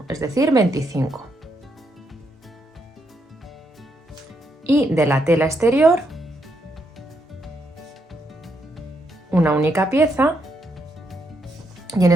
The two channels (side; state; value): both; normal; correlation 0.78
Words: es decir, 25. Y de la tela exterior, una única pieza, y en